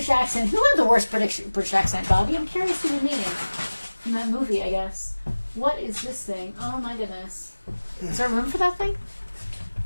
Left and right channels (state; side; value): inverted; both; correlation -1.00